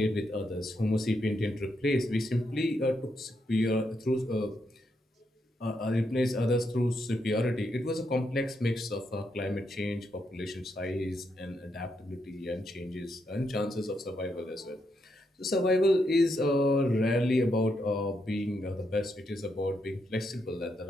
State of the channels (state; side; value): normal; both; correlation 0.80